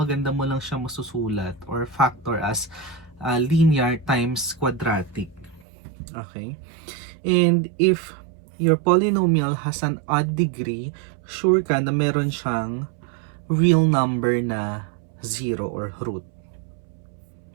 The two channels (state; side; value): drops out; left; at 5.7 s